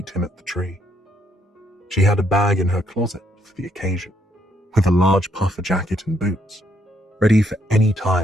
him at the tree. She had a bag in her closet for the occasion, with a large puffer jacket and boots, ready for any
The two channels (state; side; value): normal; both; correlation 0.72